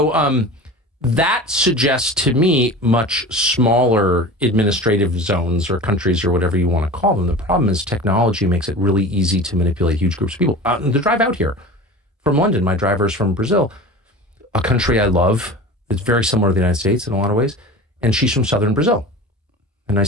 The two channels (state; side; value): normal; both; correlation 0.35